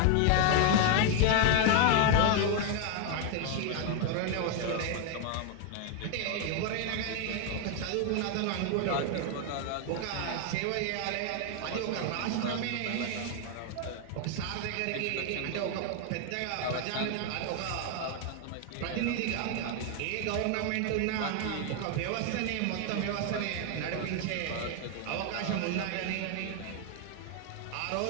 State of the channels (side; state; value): both; different; correlation 0.00